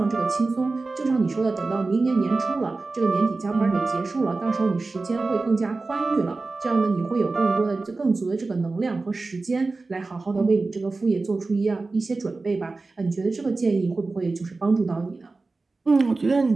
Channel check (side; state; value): left; quieter; 3.6 dB